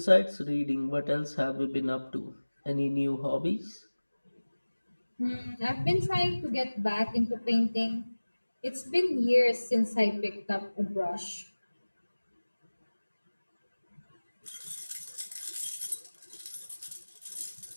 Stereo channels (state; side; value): inverted; both; correlation -1.00